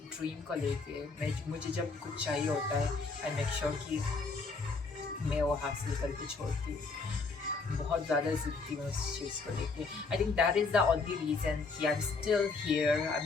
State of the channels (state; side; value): quieter; right; 4.2 dB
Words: को लेके। मैं मुझे जब कुछ चाहिए होता है आई मेक श्योर कि मैं वो हासिल करके छोड़ती हूँ। बहुत ज़्यादा ज़िद्दी हूँ इस चीज़ को लेके। I think that is the only reason कि I am still here, I